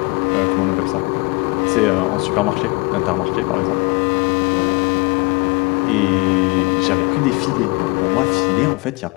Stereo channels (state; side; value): quieter; right; 26.3 dB